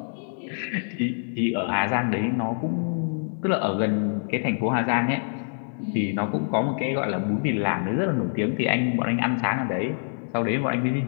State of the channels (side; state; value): right; silent; digital silence